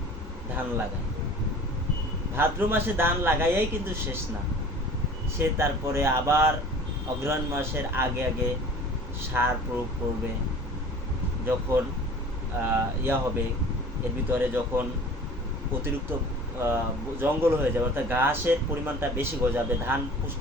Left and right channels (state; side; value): normal; both; correlation 0.44